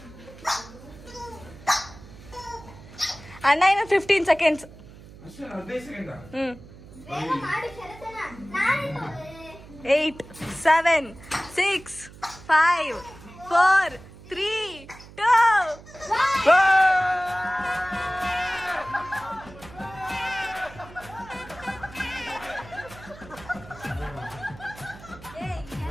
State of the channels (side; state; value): right; noise; hum, 19 dB below the sound